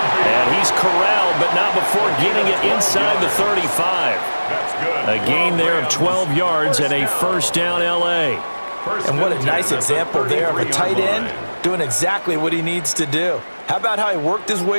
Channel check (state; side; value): inverted; both; correlation -1.00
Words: And he's corralled, but not before getting it inside the 35. A gain there of 12 yards and a first down L.A. And what a nice example there of a tight end doing exactly what he needs to do. How about how he worked his